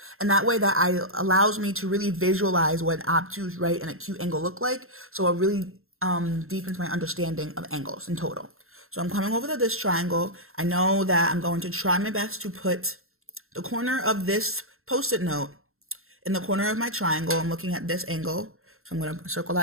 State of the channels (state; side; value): late; left; 0.62 ms